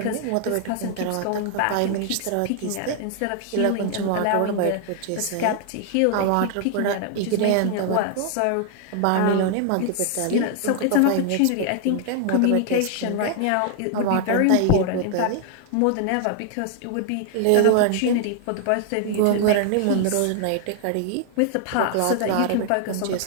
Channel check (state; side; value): different; both; correlation 0.00